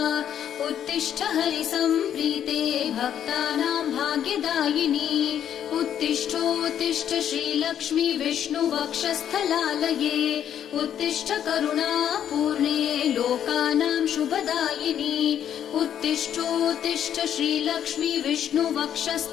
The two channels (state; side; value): quieter; right; 9.7 dB